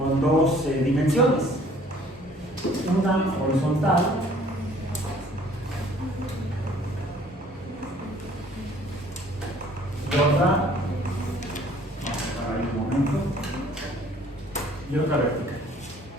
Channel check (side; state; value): both; normal; correlation 0.55